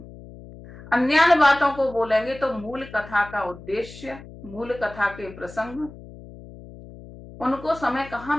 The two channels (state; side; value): noise; left; hum, 17 dB below the sound